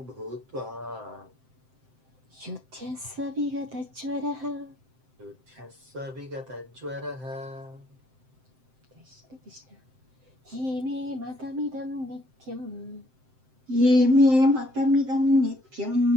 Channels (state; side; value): late; left; 7.7 ms